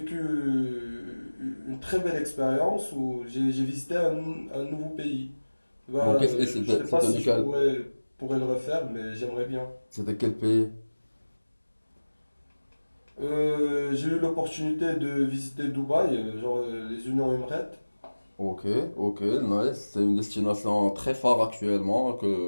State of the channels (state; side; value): inverted; both; correlation -1.00